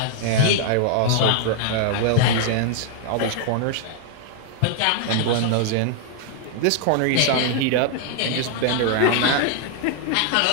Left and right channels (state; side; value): different; both; correlation 0.00